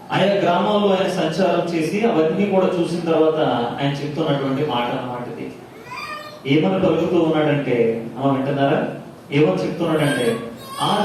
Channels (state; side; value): identical; both; correlation 1.00